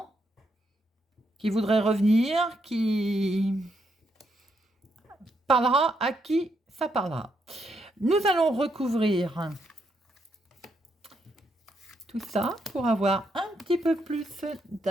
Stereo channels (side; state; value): both; normal; correlation 0.78